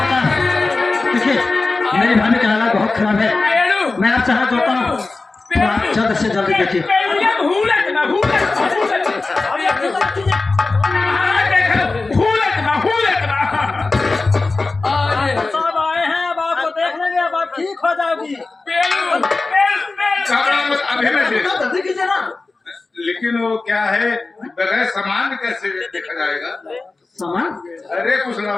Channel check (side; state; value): right; quieter; 3.6 dB